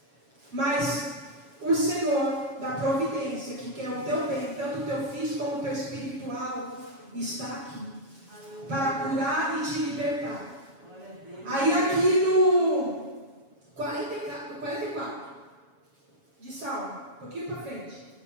Mas o Senhor da providência, que quer o teu bem, tanto o teu físico como o teu espiritual, está aqui para curar e te libertar. Aí aqui no 44 de Salmo, um pouquinho para frente,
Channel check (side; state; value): left; late; 7.2 ms